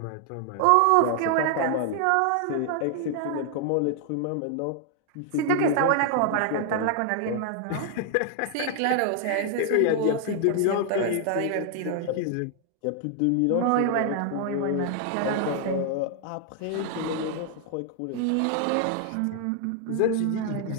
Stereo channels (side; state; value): both; different; correlation 0.00